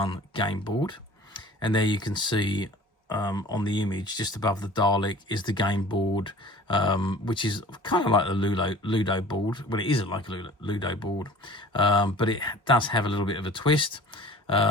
game board. And there you can see on the image just above the Dalek is the game board, which is kind of like the Ludo board. Well, it isn't like a Ludo board, but it does have a little bit of a twist.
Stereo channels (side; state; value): both; normal; correlation 0.45